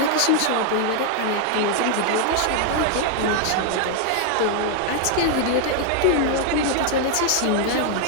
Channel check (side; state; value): both; different; correlation 0.00